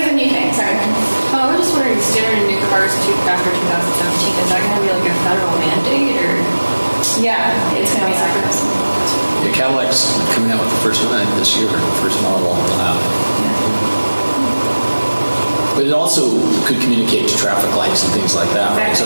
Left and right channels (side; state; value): both; inverted; correlation -1.00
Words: it's a new thing. Sorry. I'm just wondering, standard new cars after 2017, is that going to be like a federal mandate, or? Yeah, it's going to be like this. Yeah, Cadillac's coming out with the first one this year, the first model they'll have. But it also could communicate to traffic lights and things like that, right?